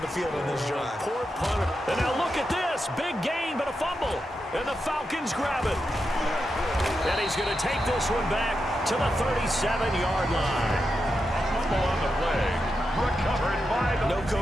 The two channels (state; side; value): normal; both; correlation 0.87